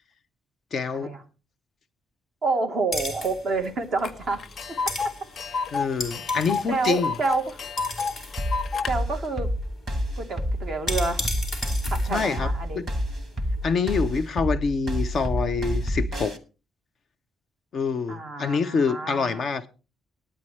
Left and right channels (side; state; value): both; normal; correlation 0.74